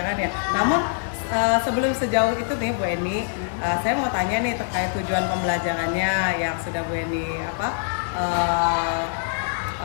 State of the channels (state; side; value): silent; right; digital silence